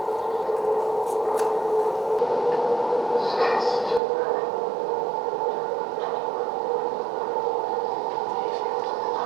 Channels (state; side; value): drops out; left; at 4.0 s